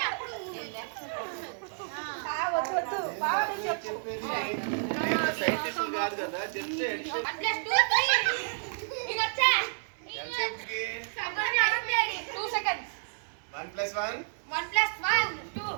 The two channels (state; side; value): silent; left; 55 dB below the other